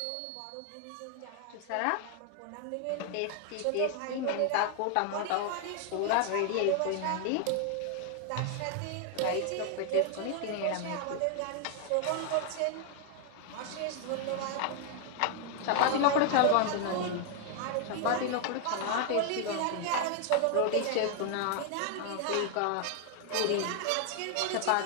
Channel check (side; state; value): both; different; correlation 0.00